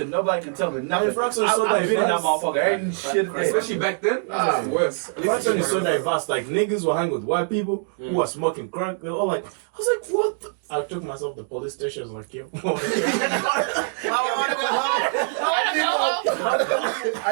Nobody can tell me I mean, nothing. Frankston is so I've been in that diverse. motherfucker. Ain't shit. Especially back then, it's worse. Frankston is so diverse. Like, niggas were hanging with white people who were smoking crack. They were all like, I was like, what the? I took myself to the police station. I was like, yo. I want to go home.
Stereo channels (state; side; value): silent; left; digital silence